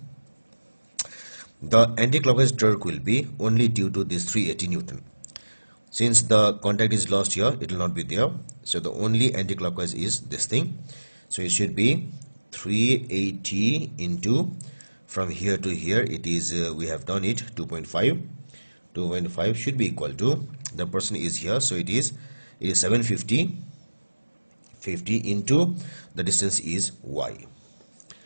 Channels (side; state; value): both; inverted; correlation -1.00